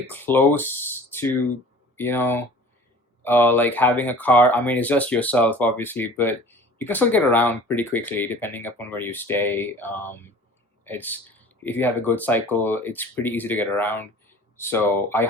close to you know like having a car. I mean, it's just yourself obviously, but you can still get around pretty quickly depending upon where you stay. It's If you have a good cycle, it's pretty easy to get around. So I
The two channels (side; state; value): both; normal; correlation 0.45